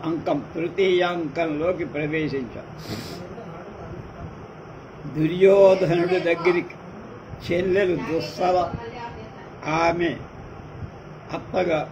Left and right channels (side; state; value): both; identical; correlation 1.00